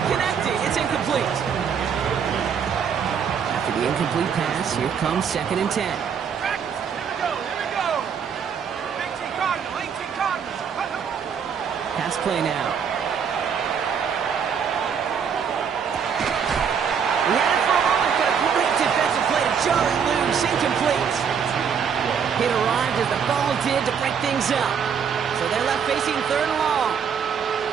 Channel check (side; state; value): left; quieter; 7.1 dB